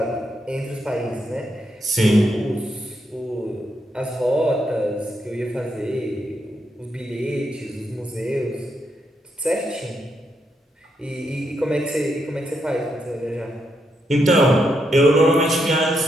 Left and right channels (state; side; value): normal; both; correlation 0.80